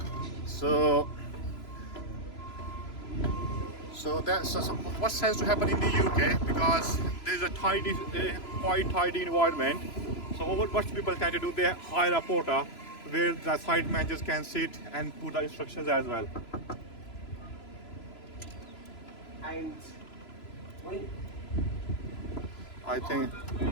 So that's what tends to happen in the UK, because there's a quite tidy environment. So what people tend to do, they hire a porter where the site managers can sit and put the instructions as well. And I think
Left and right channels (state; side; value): late; right; 3.0 ms